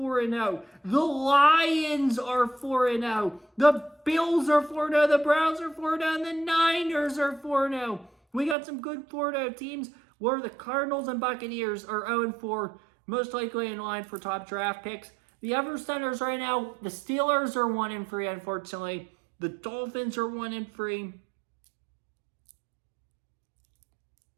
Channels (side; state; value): left; drops out; at 8.6 s